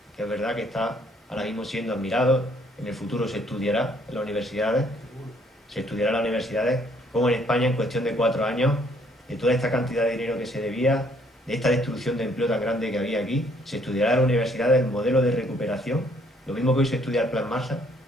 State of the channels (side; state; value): both; normal; correlation 0.65